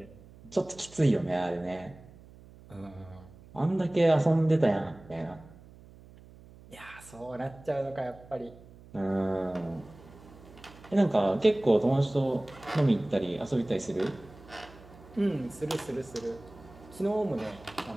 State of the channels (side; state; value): right; noise; hum, 21 dB below the sound